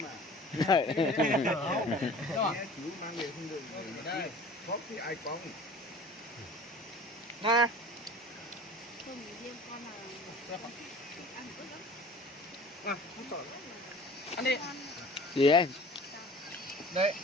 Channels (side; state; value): both; normal; correlation 0.44